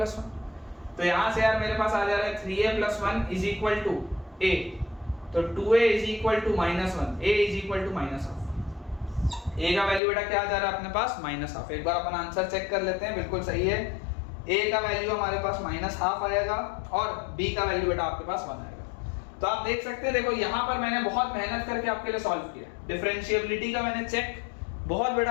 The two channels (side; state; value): right; drops out; at 10.0 s